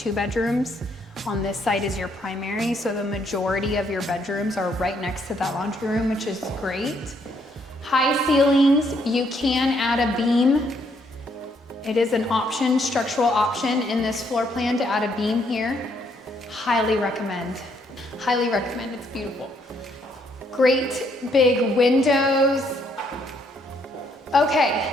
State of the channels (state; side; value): normal; both; correlation 0.71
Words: bedrooms. On this side is your primary, so the majority of your bedrooms are right next to that laundry room, which is great. High ceilings, you can add a beam. It is an option, structural option in this floor plan to add a beam here. Highly recommend. Highly recommend, it's beautiful. Great big windows. Okay,